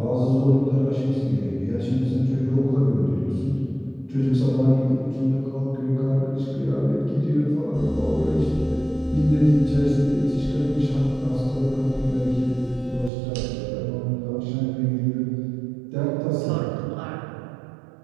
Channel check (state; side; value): drops out; left; at 13.1 s